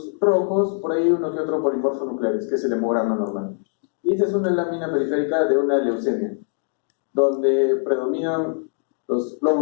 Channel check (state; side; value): silent; right; digital silence